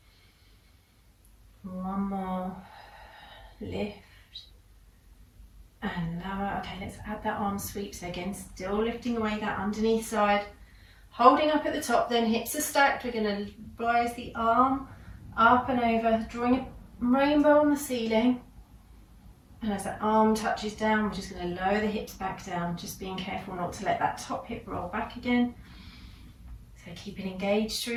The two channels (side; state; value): both; identical; correlation 1.00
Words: 1 more, lift and lower. Okay, let's add that arm sweep. So again, still lifting away that underneath side, holding up at the top, then hips are stacked. We're going to rise the arm up and over, drawing a rainbow on the ceiling. And as that arm touches down, we're just going to lower the hips back down, just being careful not to let that top hip roll back again. So keeping engaged